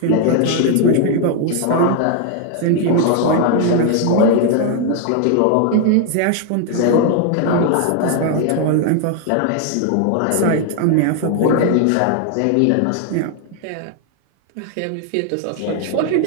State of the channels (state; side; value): different; both; correlation 0.00